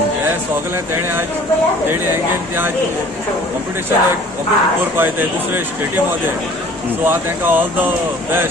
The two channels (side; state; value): both; normal; correlation 0.50